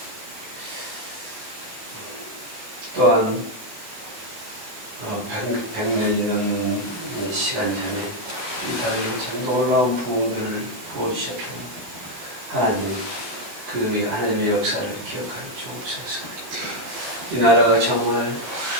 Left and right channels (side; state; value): left; late; 16 ms